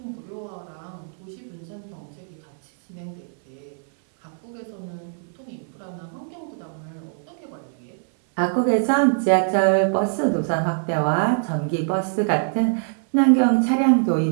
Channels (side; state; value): left; silent; 61 dB below the other